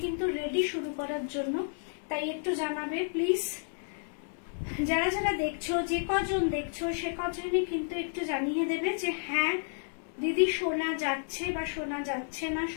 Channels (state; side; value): silent; right; digital silence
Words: কিন্তু রেডি শুরু করার জন্য, তাই একটু জানাবে প্লিজ। যারা যারা দেখছো, যে কজন দেখছো সে কজনই কিন্তু একটু জানিয়ে দেবে যে হ্যাঁ দিদি শোনা যাচ্ছে বা শোনা যাচ্ছে না,